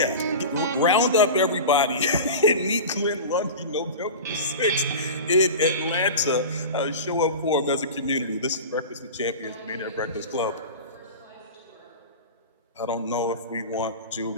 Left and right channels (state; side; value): inverted; both; correlation -0.30